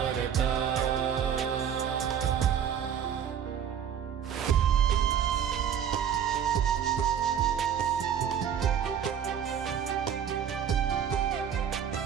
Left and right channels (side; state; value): left; quieter; 8.6 dB